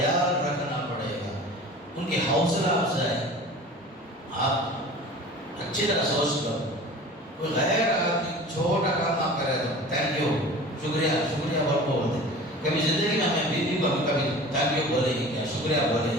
رکھنا پڑے گا، ان کی حوصلہ افزائی. آپ اچھی طرح سوچ لو، کوئی غیر آدمی چھوٹا کام آپ کرے تو تھینک یو، شکریہ شکریہ بہت بولتے. کبھی زندگی میں ہمیں بیوی کو کبھی تھینک یو بولے ہی کیا، شکریہ بولے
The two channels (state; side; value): normal; both; correlation 0.40